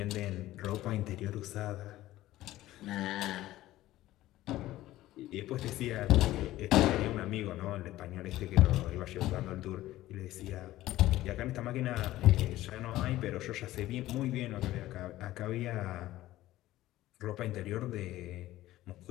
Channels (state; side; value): quieter; right; 15.6 dB